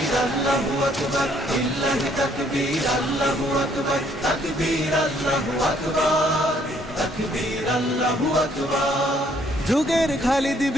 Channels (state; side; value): normal; both; correlation 0.65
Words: আল্লাহু আকবার, লিল্লাহি তাকবীর আল্লাহু আকবার, তাকবীর আল্লাহু আকবার, তাকবীর আল্লাহু আকবার। যুগের খালিদ